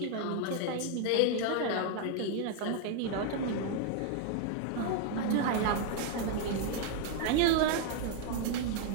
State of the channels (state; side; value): different; both; correlation 0.00